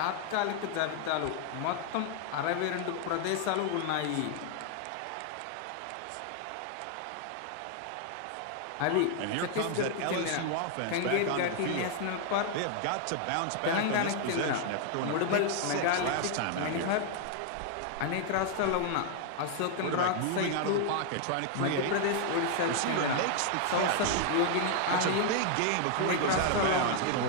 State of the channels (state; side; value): different; both; correlation 0.00